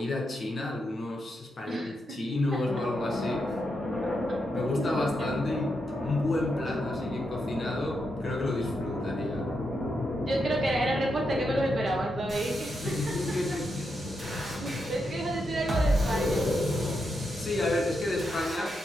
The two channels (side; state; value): both; normal; correlation 0.83